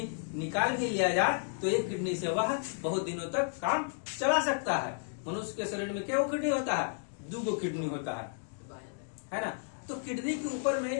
निकाल भी लिया जाए तो एक किडनी से वह बहुत दिनों तक काम चला सकता है। मनुष्य के शरीर में क्या किडनी होता है? 2 किडनी होता है ना। तो किडनी के ऊपर में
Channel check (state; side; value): silent; right; digital silence